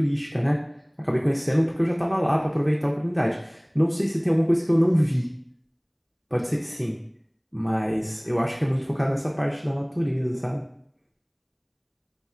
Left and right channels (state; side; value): identical; both; correlation 1.00